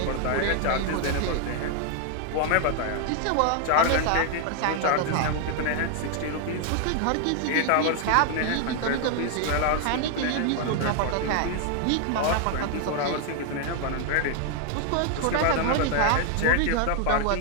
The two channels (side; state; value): both; different; correlation 0.00